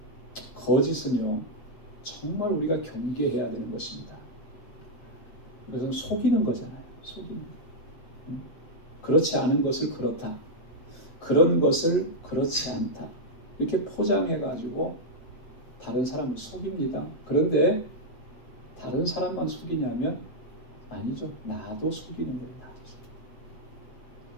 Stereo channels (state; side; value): late; right; 7.7 ms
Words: 거짓은요, 정말 우리가 경계해야 되는 것입니다. 이것은 속이는 거잖아요. 속이는 거. 그렇지 않은 것을 그렇다. 그런 것을 그렇지 않다. 이렇게 포장해가지고 다른 사람을 속입니다. 그런데 다른 사람만 속이냐면 아니죠. 나도 속이는 거예요. 나도 속이는.